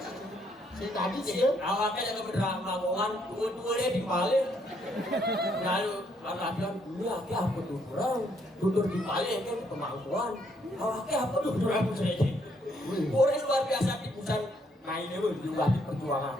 si tadi gitu. Awaknya jaga berdrama mongan dua dia dibalik. Lalu latihan ini aki apa tutur dibalik kan kemampuan. Awaknya apa tutur aku saja. Orang luar biasa tipusan mainnya juga di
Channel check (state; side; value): normal; both; correlation 0.71